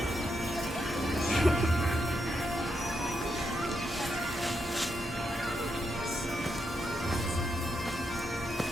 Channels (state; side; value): normal; both; correlation 0.82